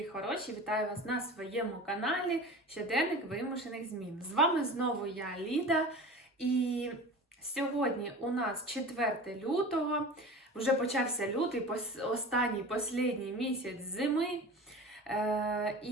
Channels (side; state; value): both; normal; correlation 0.35